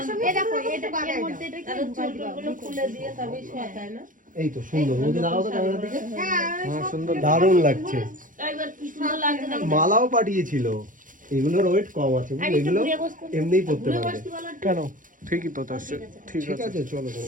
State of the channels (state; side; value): late; left; 0.39 ms